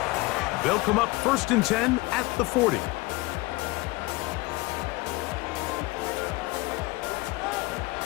They'll come up 1st and 10 at the 40.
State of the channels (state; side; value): quieter; right; 22.7 dB